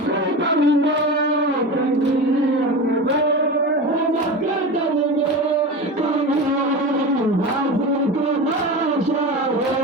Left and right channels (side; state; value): both; normal; correlation 0.27